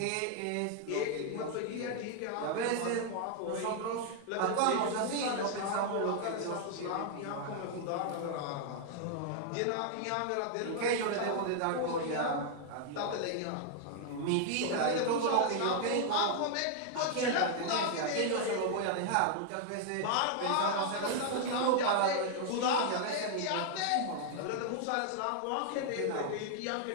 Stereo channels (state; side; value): different; both; correlation 0.00